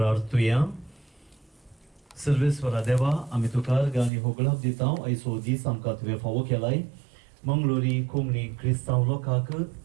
सर्वेस्वरा देवा आमी तुका गाणी होगळाक दिता आयचो दीस आमकां तुवें फावो केलाय मंगळुरी कोंकणी क्रिस्तांव लोकांक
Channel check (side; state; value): left; drops out; at 4.1 s